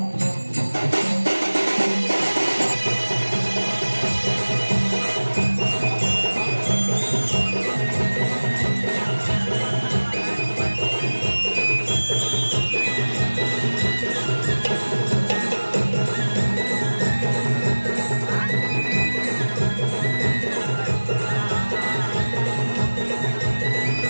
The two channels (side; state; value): both; inverted; correlation -1.00